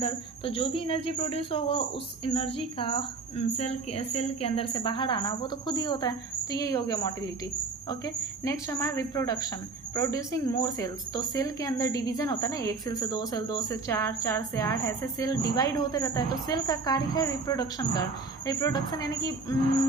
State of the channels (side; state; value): left; quieter; 4.0 dB